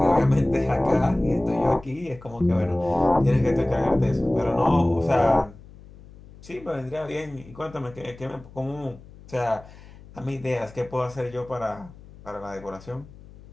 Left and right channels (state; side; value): noise; left; hum, 20 dB below the sound